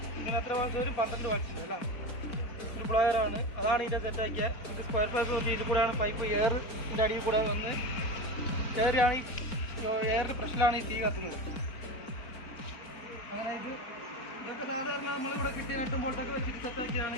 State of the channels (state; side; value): late; right; 4.4 ms